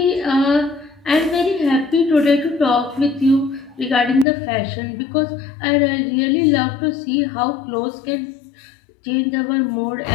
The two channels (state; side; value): drops out; right; at 4.2 s